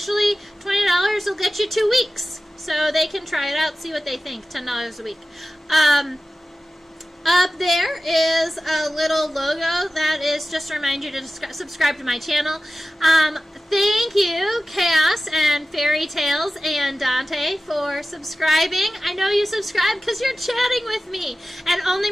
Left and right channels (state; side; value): normal; both; correlation 0.95